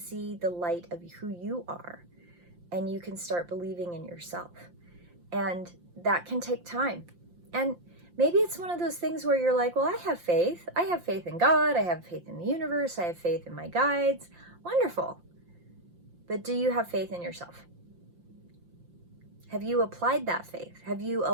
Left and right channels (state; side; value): late; left; 5.7 ms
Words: the light of who you are, and you can start believing in yourself. And that can take time. And maybe it's one of those things where you're like, well, I have faith. I have faith in God. I have faith in the universe. I have faith in my guides. Wonderful. But do you have faith in yourself? Have you applied that faith? Have you